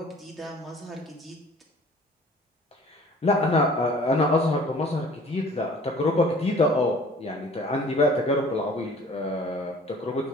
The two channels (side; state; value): both; normal; correlation 0.50